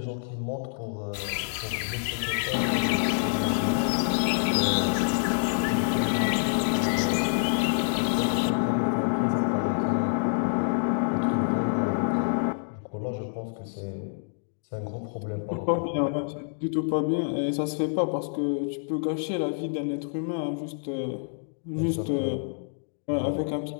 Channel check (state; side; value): silent; right; digital silence